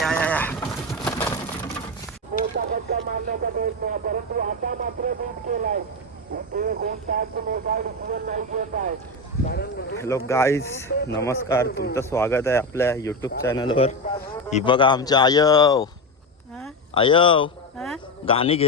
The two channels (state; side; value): normal; both; correlation 0.15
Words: आया, आया. हॅलो गाईज, नमस्कार. तुमचं स्वागत आहे आपल्या यूट्यूब चॅनलवर. ही बघा आमच्या आयव आयव गाणी घे